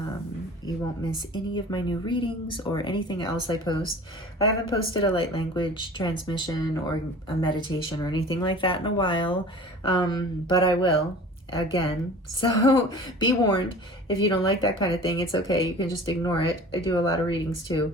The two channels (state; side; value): normal; both; correlation 0.42